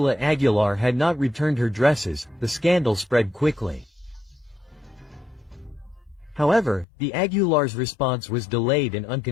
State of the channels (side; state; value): right; drops out; at 6.9 s